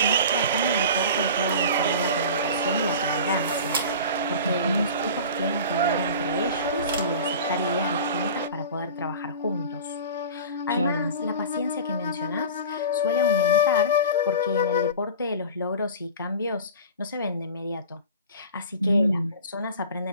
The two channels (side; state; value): both; inverted; correlation -0.36